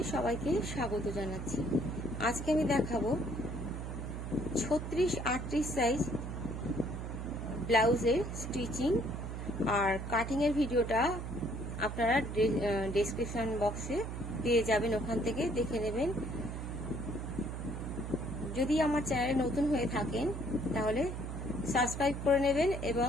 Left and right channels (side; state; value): right; noise; hum, 6 dB below the sound